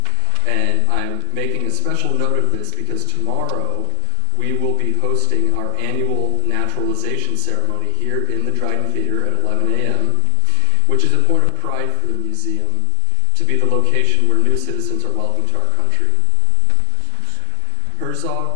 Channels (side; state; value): both; different; correlation 0.00